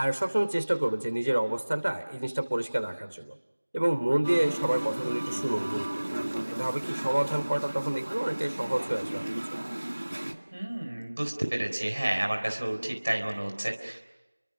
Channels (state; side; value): inverted; both; correlation -1.00